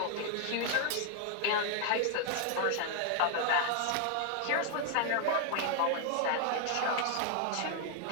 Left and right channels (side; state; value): both; different; correlation 0.00